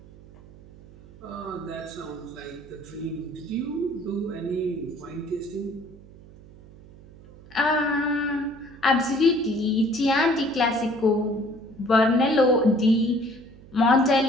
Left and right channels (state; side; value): noise; right; hum, 21 dB below the sound